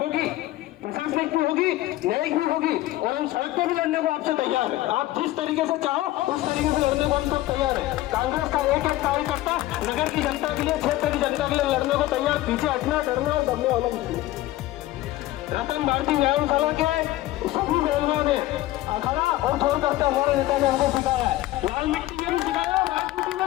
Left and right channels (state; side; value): quieter; right; 16.3 dB